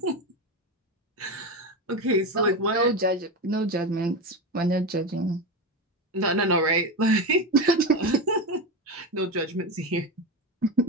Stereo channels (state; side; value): normal; both; correlation 0.18